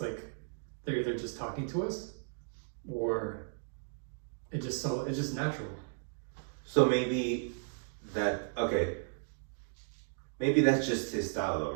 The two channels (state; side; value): silent; left; digital silence